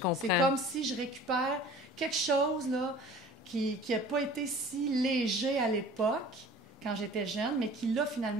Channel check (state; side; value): normal; both; correlation 0.45